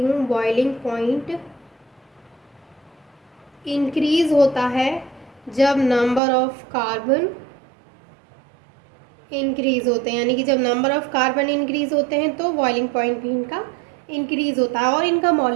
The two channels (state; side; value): drops out; left; at 6.2 s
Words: बॉइलिंग पॉइंट इंक्रीज़ होता है जब नंबर ऑफ कार्बन इंक्रीज़ होते हैं, यानी कि जब नंबर ऑफ कार्बन इंक्रीज़ होते हैं तो बॉइलिंग पॉइंट भी इनका इंक्रीज़ होता है और इनका